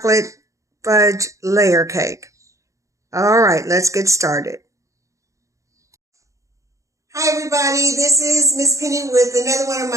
fudge layer cake. All right, let's get started. Hi everybody, this is Miss Penny with another one of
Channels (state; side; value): late; left; 0.15 ms